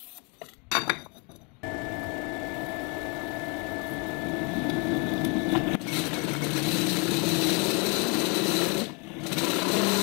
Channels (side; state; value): right; quieter; 32.6 dB